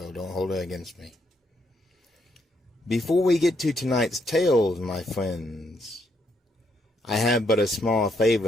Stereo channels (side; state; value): both; normal; correlation 0.75